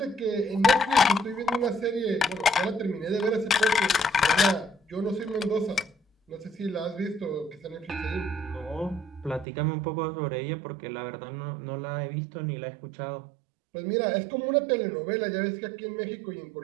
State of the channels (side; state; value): left; drops out; at 9.5 s